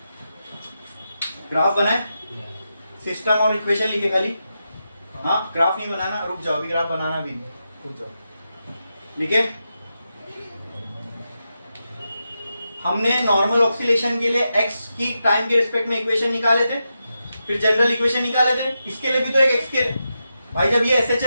ग्राफ बनाए, सिस्टम और इक्वेशन लिखे खाली, हाँ ग्राफ नहीं बनाना, रुक जाओ, अभी ग्राफ बनाना भी नहीं, रुक जाओ। लिखे, हमने नॉर्मल ऑक्सीलेशन के लिए x की टाइम के रिस्पेक्ट में इक्वेशन निकाले थे, फिर जनरल इक्वेशन निकाले थे, इसके लिए भी तो एक x के, भाई जब ये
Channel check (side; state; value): both; inverted; correlation -0.88